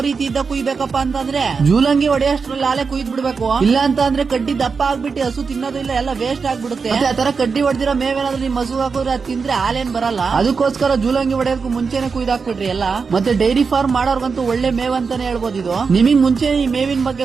ರೀತಿ ಇದ್ದ ಕುಯ್ಬೇಕಪ್ಪ ಅಂತಂದ್ರೆ, ಜೂಲಂಗಿ ಹೊಡೆಯಷ್ಟ್ರಲ್ಲಿ ಹಾಲೆ ಕುಯ್ದ್ ಬಿಡ್ಬೇಕು. ಇಲ್ಲ ಅಂತ ಅಂದ್ರೆ ಕಡ್ಡಿ ದಪ್ಪ ಆಗ್ಬಿಟ್ಟು ಹಸು ತಿನ್ನೋದು ಇಲ್ಲ, ಎಲ್ಲ ವೇಸ್ಟ್ ಆಗ್ಬಿಡುತ್ತೆ. ಆ ತರ ಕಡ್ಡಿ ಹೊಡೆದಿರೋ ಮೇವೇನಾದ್ರೂ ನಿಮ್ ಹಸು ಹಾಕಿದ್ರೆ ಅದ್ ತಿಂದ್ರೆ ಹಾಲೇನ್ ಬರಲ್ಲ. ಅದಕ್ಕೋಸ್ಕರ ಜೂಲಂಗಿ ಹೊಡೆಯೋದಕ್ಕೂ ಮುಂಚೆನೆ ಕುಯ್ದಾಕ್ಬಿಡ್ರಿ ಎಲ್ಲ. ಮತ್ತೆ ಡೈರಿ ಫಾರ್ಮ್ ಮಾಡೋರ್ಗಂತೂ ಒಳ್ಳೆ ಮೇವ್ ಅಂತಾನೆ ಹೇಳ್ಬೋದು ಇದು. ನಿಮಗ್ ಮುಂಚೆ ಈ ಮೇವಿನ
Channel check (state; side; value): quieter; left; 5.2 dB